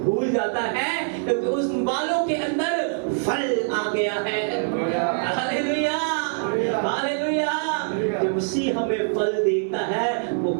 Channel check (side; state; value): left; silent; 60 dB below the other